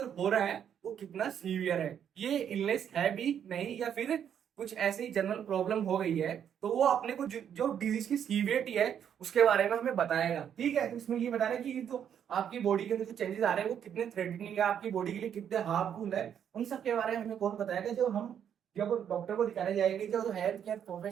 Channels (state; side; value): quieter; left; 8.8 dB